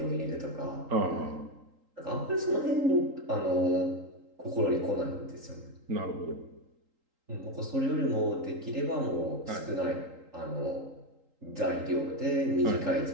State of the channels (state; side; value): late; left; 3.8 ms